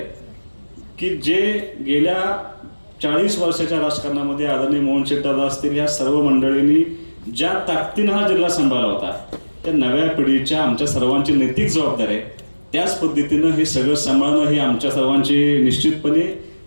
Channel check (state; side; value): inverted; both; correlation -1.00